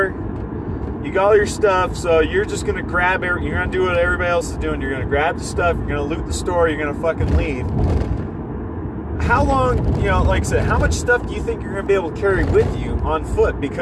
You got all your stuff, so you're just gonna grab it. You're gonna do what everybody else is doing. You're gonna grab the stuff. You're gonna loot the store. You're gonna fucking leave. How long? You know, like I said, how much stuff do you think you're gonna be able to carry with you on foot?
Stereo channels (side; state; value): both; identical; correlation 1.00